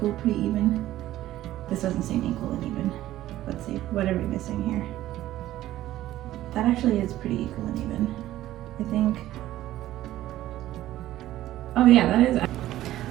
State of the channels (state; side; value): quieter; left; 14.3 dB